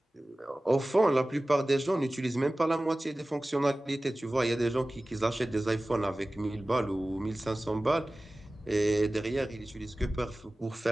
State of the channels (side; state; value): both; normal; correlation 0.97